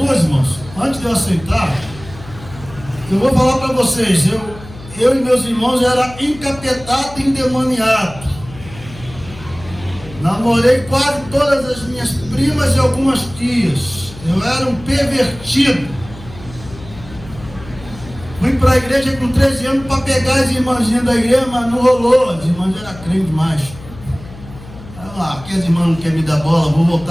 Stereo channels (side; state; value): left; noise; hum, 17 dB below the sound